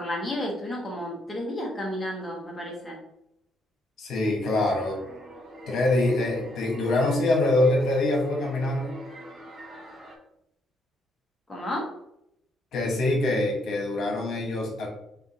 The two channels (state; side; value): normal; both; correlation 0.74